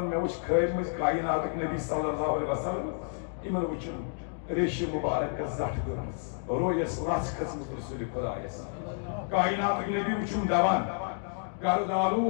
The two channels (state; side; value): silent; right; digital silence